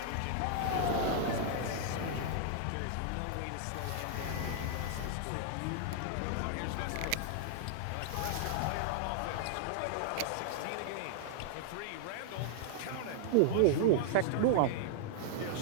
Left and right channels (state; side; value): different; both; correlation -0.01